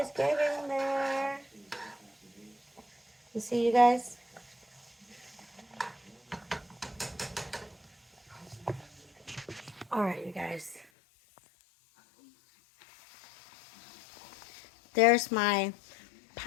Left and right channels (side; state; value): right; drops out; at 10.9 s